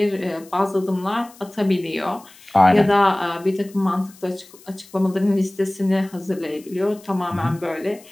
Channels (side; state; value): left; noise; hiss, 24 dB below the sound